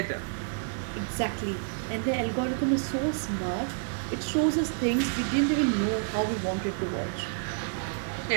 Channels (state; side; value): silent; left; digital silence